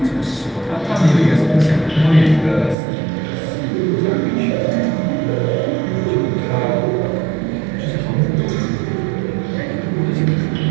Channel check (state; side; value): drops out; left; at 2.8 s